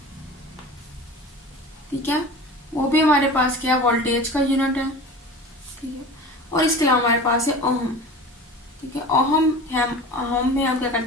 ठीक है, वो भी हमारे पास क्या वोल्टेज का यूनिट है। ठीक है, और इसके अलावा हमारे पास है ओहम। ठीक है, ओहम में हम क्या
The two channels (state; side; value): normal; both; correlation 0.36